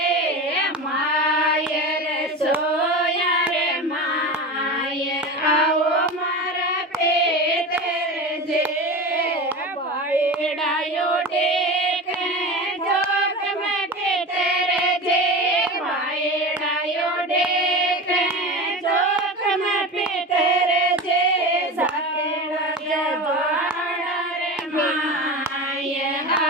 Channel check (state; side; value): normal; both; correlation 0.28